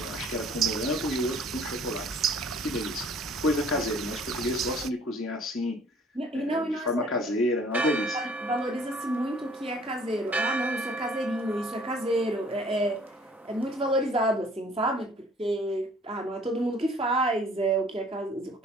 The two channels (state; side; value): normal; both; correlation 0.55